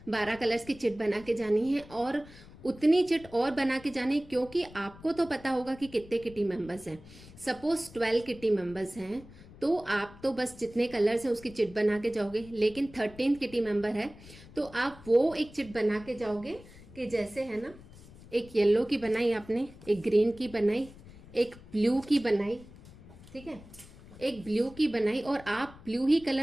12 कलर्स की चिट बना के जानी है, और उतनी चिट और बना के जानी, क्योंकि आपको तो पता होगा कि कितने किटी मेंबर्स हैं। सपोज 12 किटी मेंबर्स हैं तो आप तो बस जितने कलर्स हैं उसकी चिट बना के जाओगे, लेकिन 13th किटी मेंबर है तो आप वो एक चिट बना के जाओगे कि जैसे है ना, एक येलो की बनाई आपने, एक ग्रीन की बनाई, एक ब्लू की बनाई, ठीक है, एक ब्लू की बनाई, और आप ब्लू ही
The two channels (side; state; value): left; noise; rumble, 20 dB below the sound